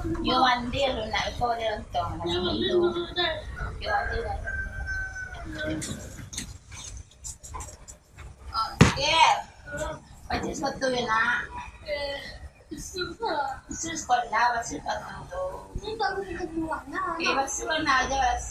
Yo mandi lu nak kau dia untung. Yo mandi lah. Oh, kel. Baca satu ya nak. Sekolah baca satu. Ini baru keduanya. Baca mana aja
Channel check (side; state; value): both; identical; correlation 1.00